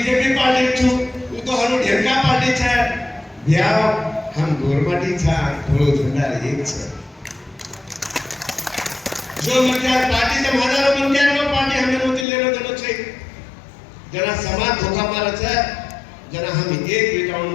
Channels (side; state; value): right; drops out; at 12.2 s